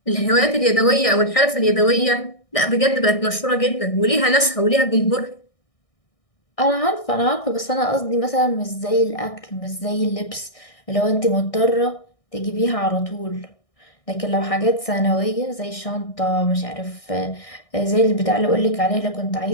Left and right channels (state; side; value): late; right; 1.6 ms